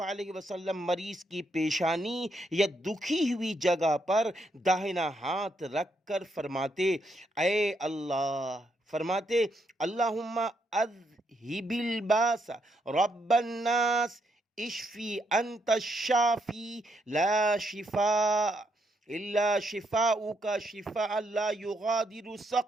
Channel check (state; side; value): normal; both; correlation 0.77